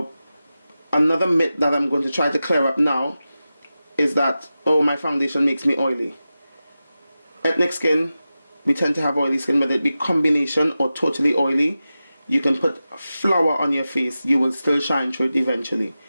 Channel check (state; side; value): inverted; both; correlation -0.93